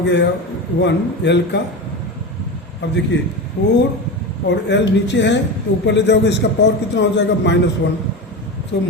गया 1 L का. अब देखिए 4 और L नीचे है तो ऊपर ले जाओगे, इसका पावर कितना हो जाएगा, -1. सो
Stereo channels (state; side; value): normal; both; correlation 0.23